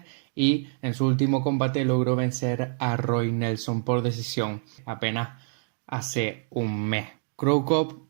y en su último combate logró vencer a Roy Nelson por decisión apenas hace un mes. Cro Cop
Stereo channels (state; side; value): silent; left; 60 dB below the other